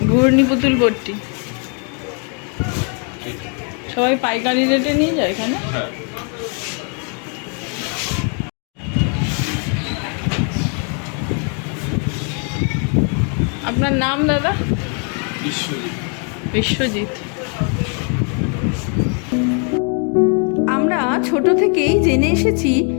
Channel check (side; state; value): right; quieter; 40.0 dB